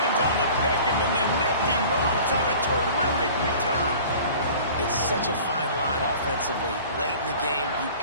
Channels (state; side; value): inverted; both; correlation -0.44